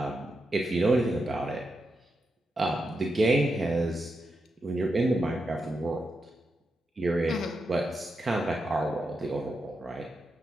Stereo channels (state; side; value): normal; both; correlation 0.86